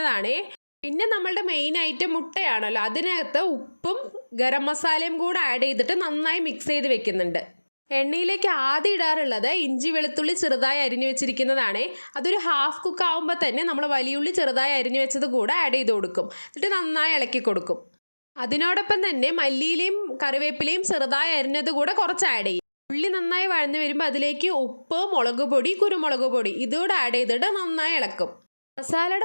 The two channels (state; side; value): inverted; both; correlation -1.00